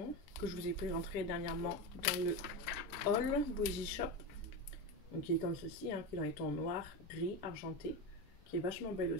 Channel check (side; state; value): both; normal; correlation 0.18